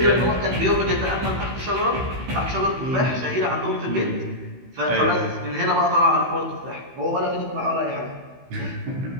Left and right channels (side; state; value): left; late; 16 ms